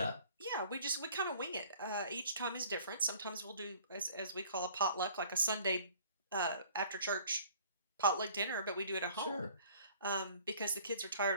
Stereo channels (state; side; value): inverted; both; correlation -0.53